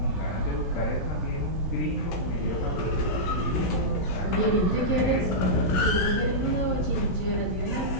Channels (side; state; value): right; late; 16 ms